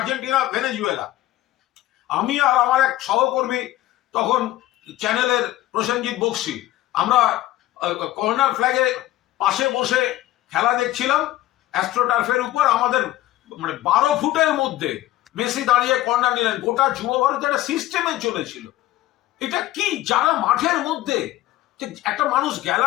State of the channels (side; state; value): right; quieter; 15.4 dB